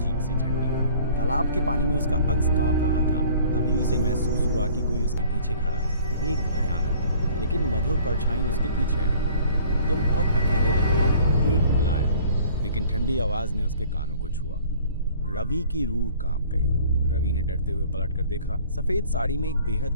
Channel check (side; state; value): both; inverted; correlation -0.51